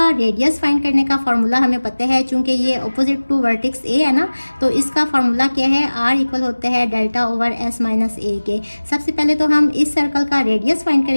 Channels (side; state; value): both; inverted; correlation -1.00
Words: रेडियस फाइंड करने का फार्मूला हमें पता है, चूंकि ये अपोजिट टू वर्टेक्स ए है ना, तो इसका फार्मूला क्या है, आर इक्वल होता है delta over S minus a के। सबसे पहले तो हम इस सर्कल का रेडियस फाइंड